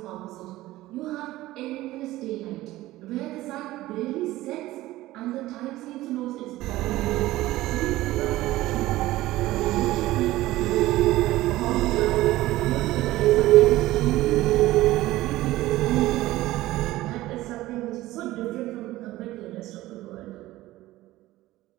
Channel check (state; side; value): quieter; left; 16.8 dB